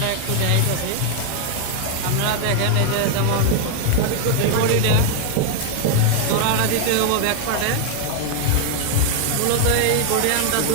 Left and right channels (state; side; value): different; both; correlation 0.00